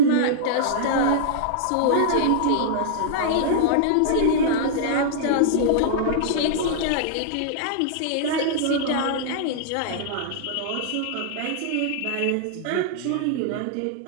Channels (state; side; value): different; both; correlation -0.02